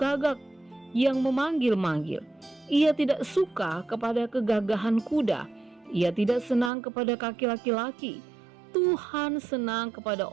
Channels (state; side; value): drops out; left; at 6.7 s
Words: yang memanggil-manggil. Ia tidak suka kepada kegagahan kuda, ia tidak senang kepada kaki laki-laki. Tuhan senang kepada